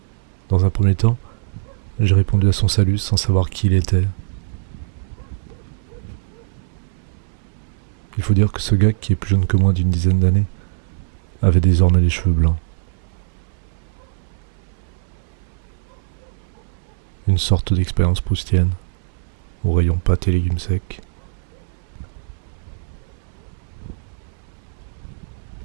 Dans un premier temps, j'ai répondu à son salut sans savoir qui il était. Il faut dire que ce gars, qui est plus jeune que moi d'une dizaine d'années, avait désormais les cheveux blancs. Une sorte d'expérience proustienne, au rayon pâtes et légumes secs.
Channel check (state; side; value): silent; left; 64 dB below the other